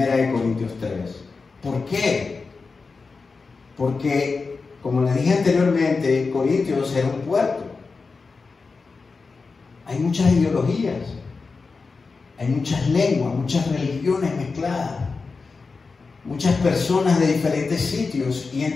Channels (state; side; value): quieter; right; 4.4 dB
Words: Corintios 3. ¿Por qué? Porque, como les dije anteriormente, Corintios era un puerto. Hay muchas ideologías, hay muchas lenguas, muchas religiones mezcladas, muchas personas de diferentes sitios. Y